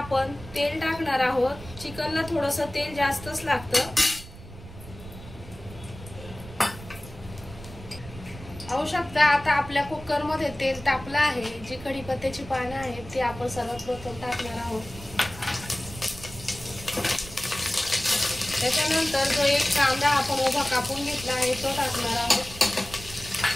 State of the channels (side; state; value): right; noise; rumble, 15 dB below the sound